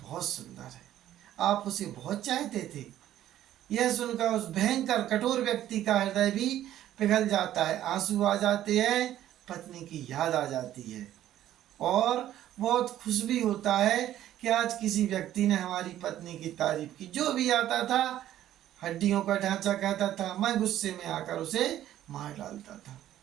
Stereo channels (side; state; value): left; quieter; 12.5 dB